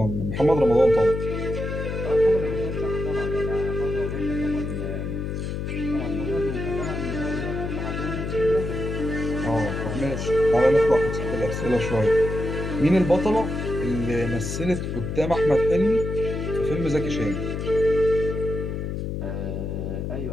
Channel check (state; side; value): noise; left; hum, 4 dB below the sound